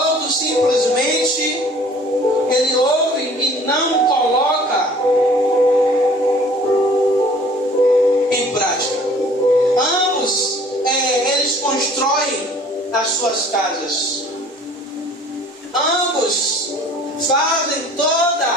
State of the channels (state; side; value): normal; both; correlation 0.51